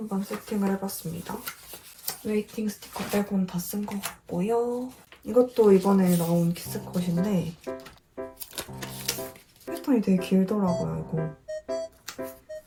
세팅을 해봤습니다. 웨이팅 스티커 빼고는 다 쓴 것 같고요. 이것도 이번에 나온 키스컷인데 패턴이 되게 길더라고요, 이거.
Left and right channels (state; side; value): identical; both; correlation 1.00